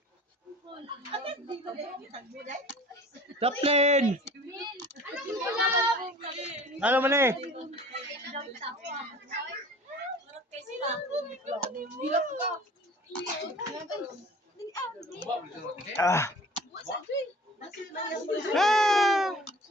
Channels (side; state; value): both; normal; correlation 0.45